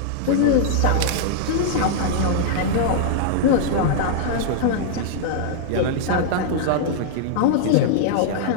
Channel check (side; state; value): both; different; correlation -0.01